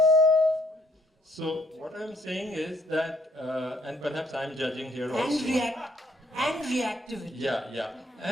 so what I'm saying is that, and perhaps I'm judging here also. And reactivity. Yeah.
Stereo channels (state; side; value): normal; both; correlation 0.67